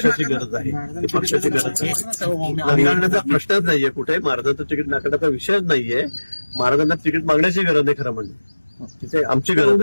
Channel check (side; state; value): both; inverted; correlation -1.00